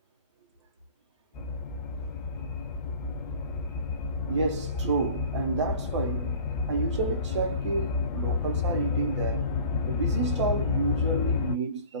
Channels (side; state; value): both; inverted; correlation -0.44